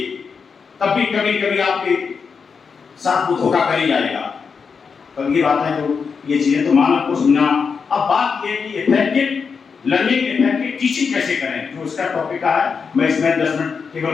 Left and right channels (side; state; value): right; quieter; 5.6 dB